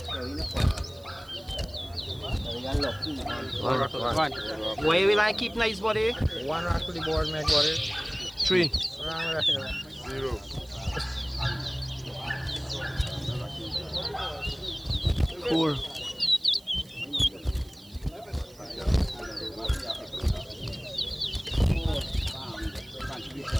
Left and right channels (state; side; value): noise; right; hiss, 25 dB below the sound